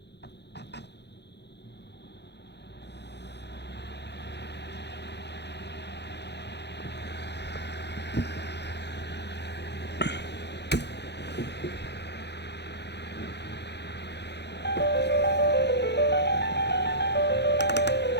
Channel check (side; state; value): right; late; 0.50 ms